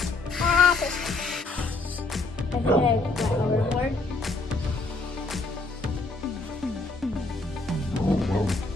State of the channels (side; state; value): right; quieter; 3.3 dB